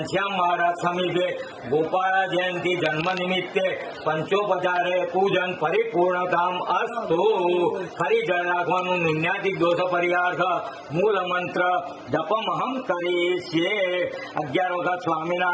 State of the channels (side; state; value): both; identical; correlation 1.00